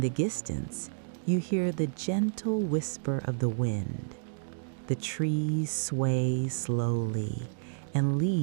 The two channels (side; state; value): left; silent; digital silence